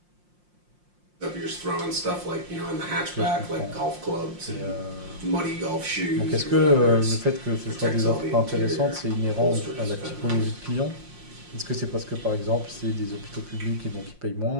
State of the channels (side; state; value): left; late; 5.6 ms